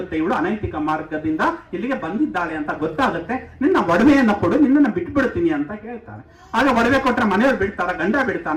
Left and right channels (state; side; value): identical; both; correlation 1.00